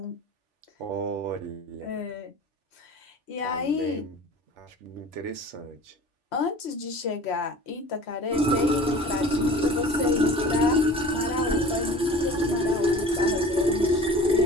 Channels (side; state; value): both; normal; correlation 0.42